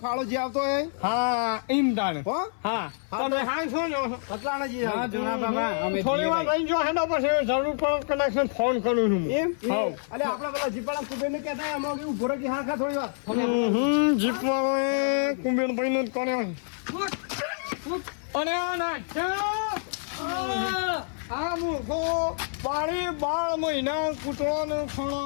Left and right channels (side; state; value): right; silent; 60 dB below the other